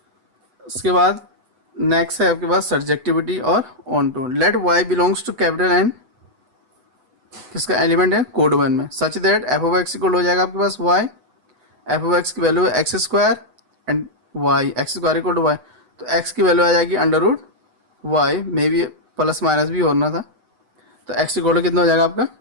उसके बाद नेक्स्ट है आपके पास सब्जेक्टिविटी और onto. Let y belongs to capital N. किसका एलिमेंट है, कोड वन में. Such that f of x equal हो जाएगा आपके पास y. f of x की वैल्यू है x square and y, x square equal to y. तो x की वैल्यू आ जाएगी under root y, maybe plus minus भी होना था. तो x इक्वल टू कितना हो जाएगा आपका,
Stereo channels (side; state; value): left; late; 8.0 ms